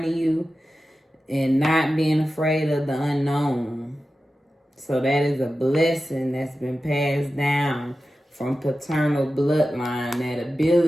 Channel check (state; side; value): normal; both; correlation 0.93